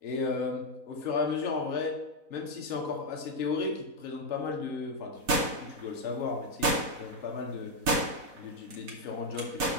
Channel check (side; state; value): left; late; 4.1 ms